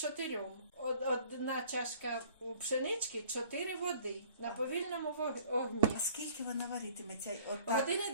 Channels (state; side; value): inverted; both; correlation -0.54